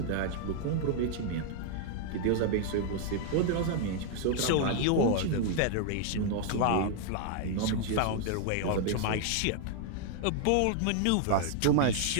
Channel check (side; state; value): both; different; correlation 0.00